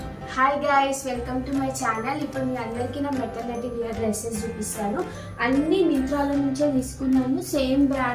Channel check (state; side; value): identical; both; correlation 1.00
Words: Hi guys, welcome to my channel. ఇప్పుడు మీ అందరికీ నా maternity wear dresses చూపిస్తాను. అన్ని మింత్రాల నుంచే తీసుకున్నాను, సేమ్